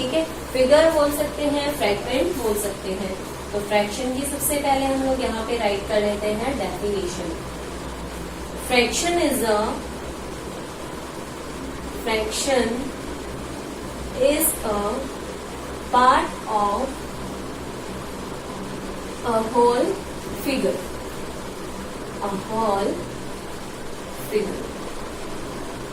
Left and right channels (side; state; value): both; identical; correlation 1.00